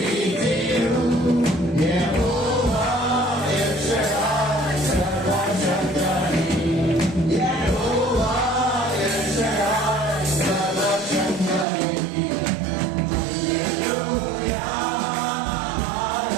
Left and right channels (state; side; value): drops out; left; at 11.7 s